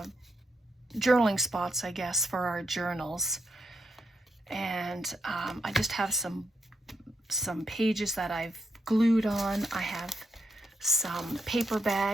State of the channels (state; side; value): normal; both; correlation 0.81